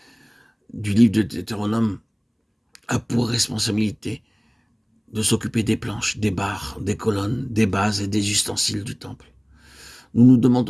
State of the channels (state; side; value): identical; both; correlation 1.00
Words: du livre de Deutéronome, a pour responsabilité de s'occuper des planches, des barres, des colonnes, des bases et des ustensiles du temple. Nous nous